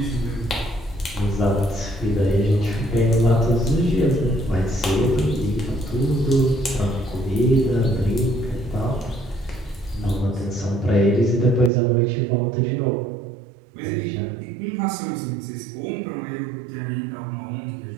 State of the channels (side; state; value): left; drops out; at 11.7 s